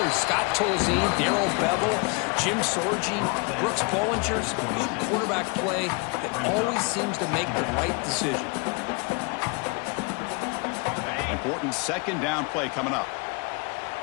Scott Tolzien, Darrell Bevel, Jim Sorgi, Brooks Bollinger. Some good quarterback play that always seems to make the right decision. Important second down play coming up.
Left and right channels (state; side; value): quieter; right; 31.2 dB